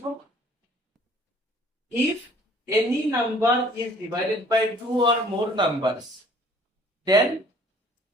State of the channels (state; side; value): normal; both; correlation 0.55